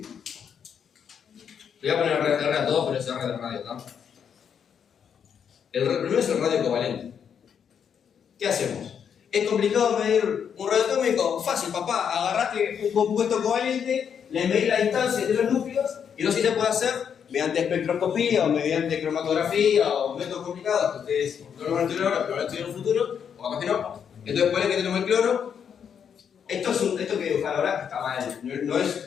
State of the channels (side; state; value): right; quieter; 7.7 dB